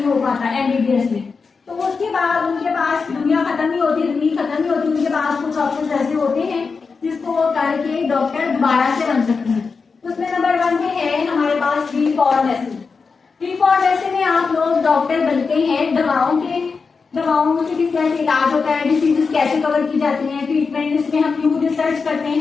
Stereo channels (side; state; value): right; quieter; 4.9 dB